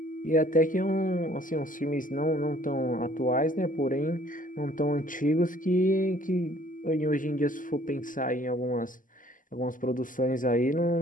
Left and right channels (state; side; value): late; right; 0.38 ms